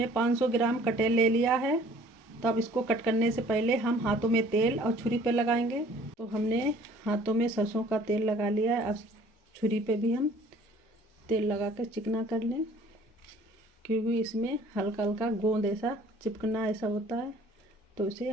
500 ग्राम कटहल ले लिया है। तो अब इसको कट करने से पहले हम हाथों में तेल और छुरी पे लगाएंगे। तो हमने हाथों में सरसों का तेल लगा लिया है। अब छुरी पे भी हम तेल लगा कर चिकना कर लें, क्योंकि इसमें हल्का हल्का गोंद ऐसा चिपकना ऐसा होता है। तो इसे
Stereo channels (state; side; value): normal; both; correlation 0.54